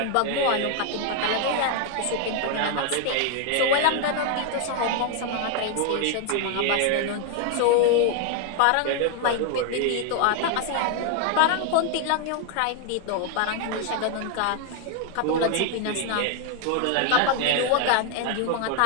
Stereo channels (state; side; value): different; both; correlation 0.00